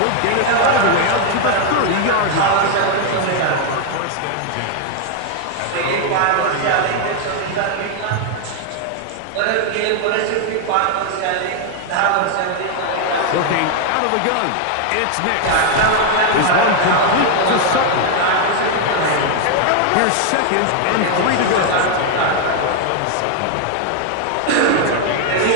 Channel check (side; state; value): both; different; correlation 0.00